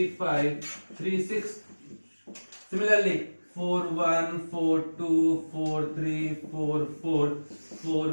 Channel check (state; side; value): inverted; both; correlation -1.00